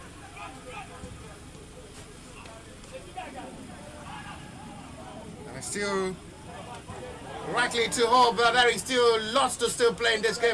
And still likely to hope that there is still lots to still play in this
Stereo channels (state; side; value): identical; both; correlation 1.00